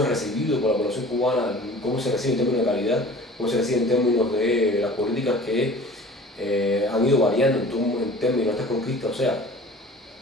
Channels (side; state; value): both; normal; correlation 0.44